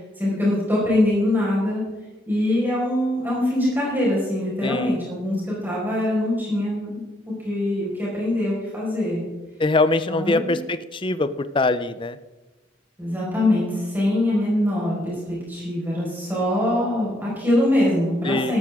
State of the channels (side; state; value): both; normal; correlation 0.72